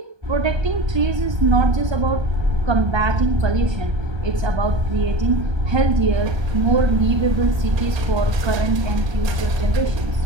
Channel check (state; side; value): late; left; 1.3 ms